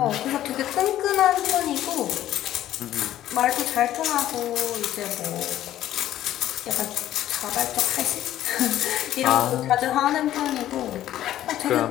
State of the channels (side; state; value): right; quieter; 12.8 dB